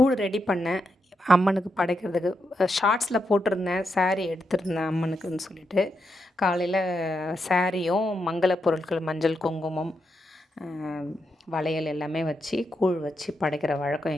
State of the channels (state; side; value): normal; both; correlation 0.83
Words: ready பண்ணேன் அம்மனுக்கு படைக்கிறதுக்கு. ஷார்ட்ஸில் போட்டிருந்தேன், சாரீ எடுத்திருந்தேன் அம்மனுக்குன்னு சொல்லிட்டு. காலையில் சாரியும் மங்கள பொருட்கள் மஞ்சள் குங்குமம் வளையல் எல்லாமே வச்சு கூழ் வச்சு படைக்கிற வழக்கம்